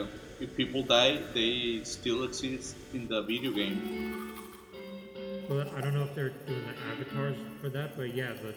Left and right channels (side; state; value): both; identical; correlation 1.00